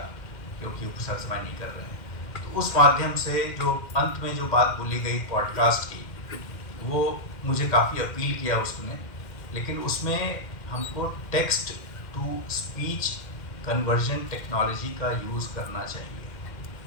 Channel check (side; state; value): right; late; 2.1 ms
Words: क्योंकि वो सर समय नहीं कर रहे हैं। तो उस माध्यम से जो अंत में जो बात बोली गई पॉडकास्ट की, वो मुझे काफ़ी अपील किया उसने, लेकिन उसमें हमको text to speech conversion technology का यूज़ करना चाहिए।